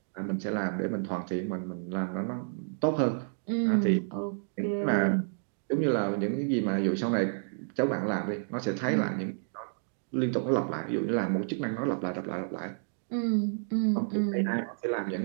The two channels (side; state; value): left; silent; digital silence